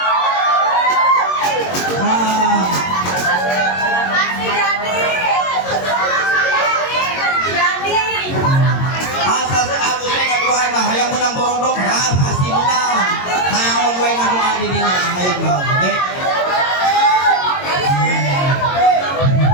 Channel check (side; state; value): right; late; 22 ms